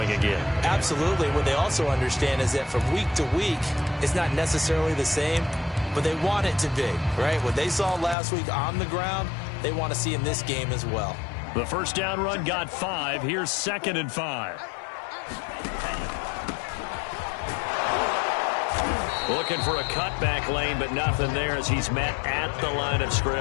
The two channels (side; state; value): right; drops out; at 8.2 s